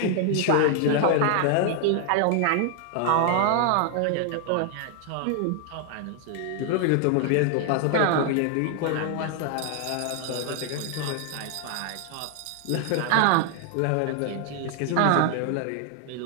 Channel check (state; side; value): different; both; correlation 0.00